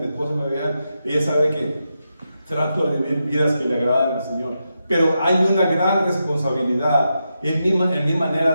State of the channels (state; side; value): inverted; both; correlation -0.86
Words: esposa me vean, ella sabe que trato de vivir vidas que le agradan al Señor. Pero hay una gran responsabilidad en mi